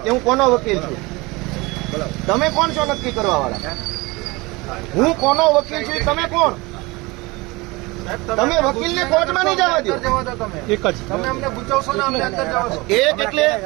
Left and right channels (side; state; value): left; quieter; 23.6 dB